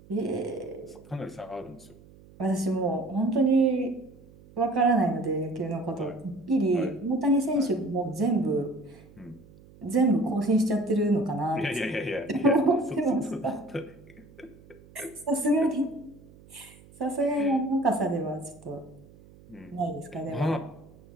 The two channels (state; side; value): noise; right; hum, 23 dB below the sound